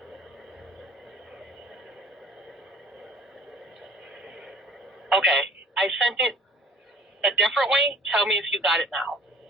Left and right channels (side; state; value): both; normal; correlation 0.50